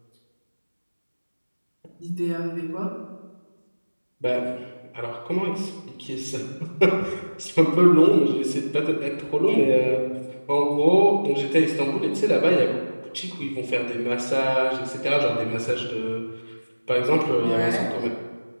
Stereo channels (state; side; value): inverted; both; correlation -1.00